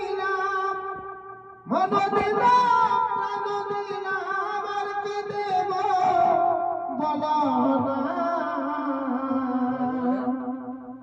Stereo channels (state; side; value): identical; both; correlation 1.00